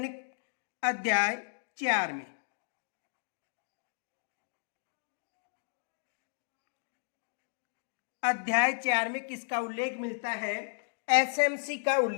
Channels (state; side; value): silent; right; digital silence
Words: अध्याय 4 में। अध्याय 4 में किसका उल्लेख मिलता है? एसएमसी का